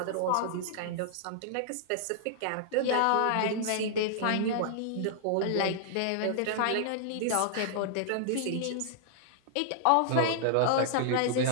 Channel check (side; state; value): both; different; correlation -0.01